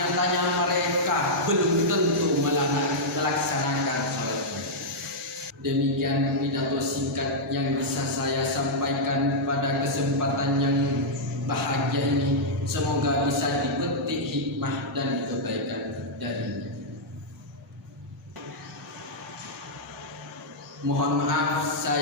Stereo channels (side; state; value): both; normal; correlation -0.07